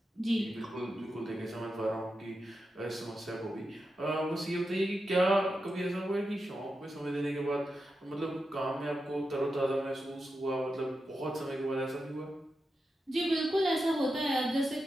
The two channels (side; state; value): both; normal; correlation 0.89